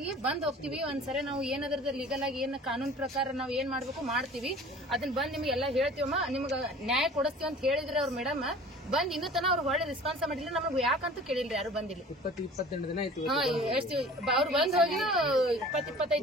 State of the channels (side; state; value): both; normal; correlation 0.45